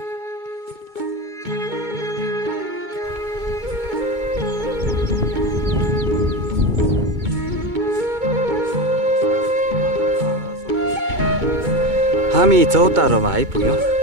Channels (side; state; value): left; late; 2.2 ms